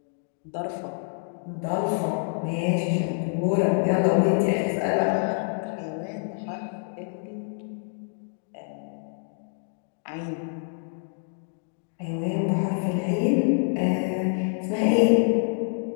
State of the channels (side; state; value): right; silent; 60 dB below the other